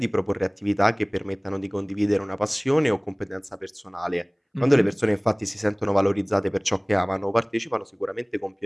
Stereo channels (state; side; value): identical; both; correlation 1.00